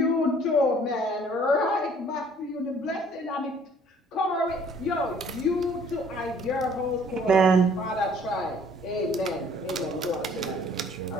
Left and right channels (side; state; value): both; normal; correlation 0.57